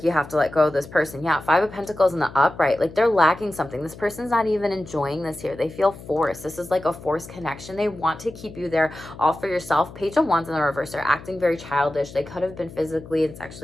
you have to let go of this person. Yeah, Five of Pentacles in the upright. Like, they're lacking something. This person's not even enjoying this here. They feel forced. This is like a forced connection. They want to keep you there all for yourself. Page of Wands in the reverse. They're acting very childish. They could have been physically and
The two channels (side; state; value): left; noise; hum, 16 dB below the sound